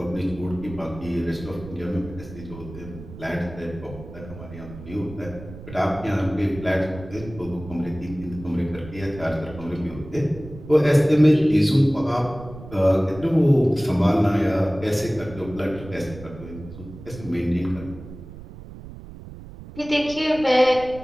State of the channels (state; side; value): noise; right; rumble, 15 dB below the sound